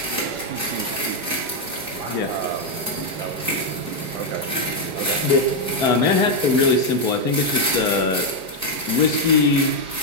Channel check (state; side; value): late; left; 4.7 ms